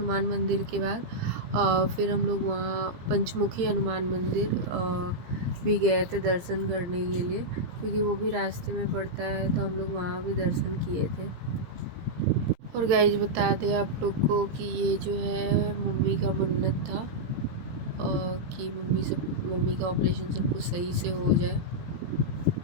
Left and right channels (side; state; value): left; late; 17 ms